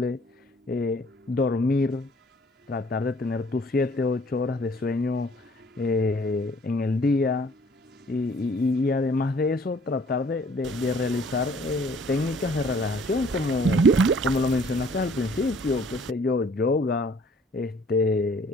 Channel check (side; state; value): both; normal; correlation 0.57